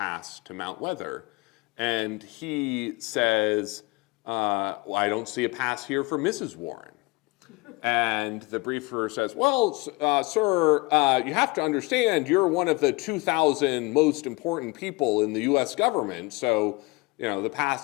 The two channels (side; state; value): right; quieter; 24.8 dB